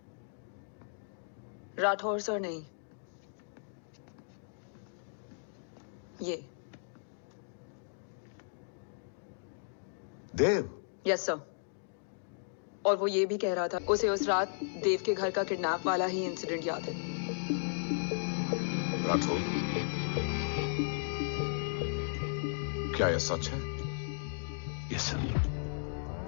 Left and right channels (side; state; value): right; silent; digital silence